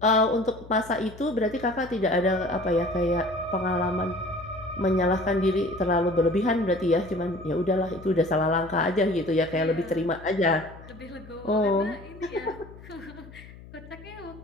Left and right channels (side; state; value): left; noise; hum, 18 dB below the sound